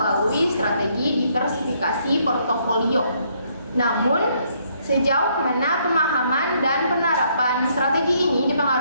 strategi diversifikasi portofolio. Namun, sejauh mana pemahaman dan penerapan strategi ini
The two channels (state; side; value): inverted; both; correlation -0.70